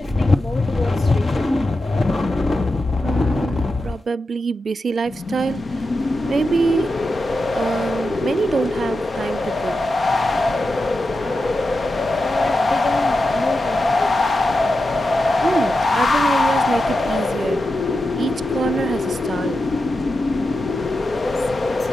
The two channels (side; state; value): both; normal; correlation 0.90